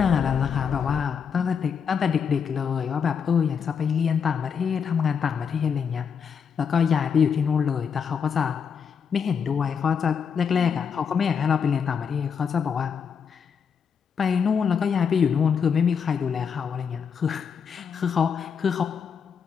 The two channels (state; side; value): quieter; right; 6.7 dB